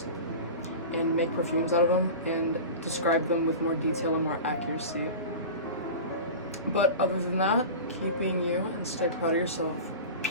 and make perfumes out of them and describe them with more detail and more accuracy. But other than that, keep being you and stay proud of yourself.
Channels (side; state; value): both; inverted; correlation -0.31